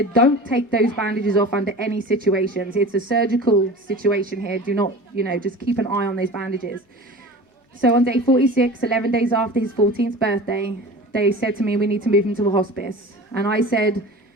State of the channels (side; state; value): both; normal; correlation 0.37